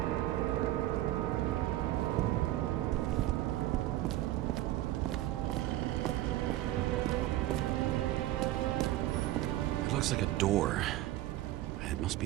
looks like a door. It must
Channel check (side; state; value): left; quieter; 15.1 dB